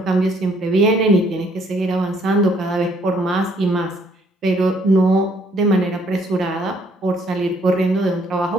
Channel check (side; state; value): both; normal; correlation 0.65